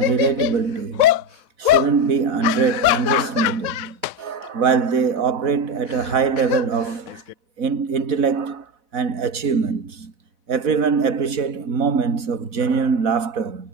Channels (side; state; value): left; late; 4.1 ms